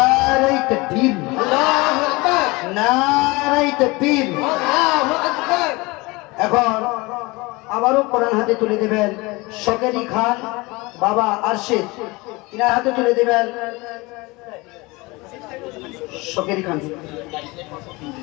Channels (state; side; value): quieter; right; 23.9 dB